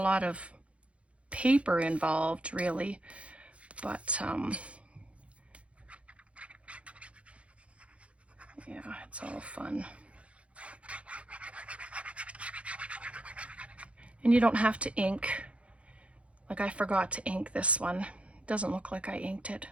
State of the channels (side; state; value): left; late; 0.062 ms